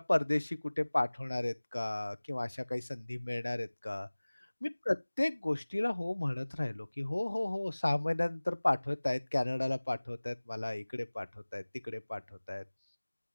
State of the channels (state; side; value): inverted; both; correlation -1.00